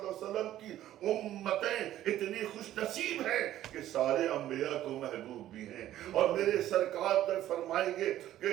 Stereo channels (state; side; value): quieter; left; 13.0 dB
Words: علیہ وسلم کی امتیں اتنی خوش نصیب ہیں کہ سارے انبیاء کو محبوب بھی ہیں، اور میرے سرکار تک فرمائیں گے